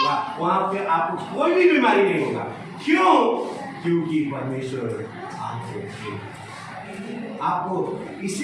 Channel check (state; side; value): identical; both; correlation 1.00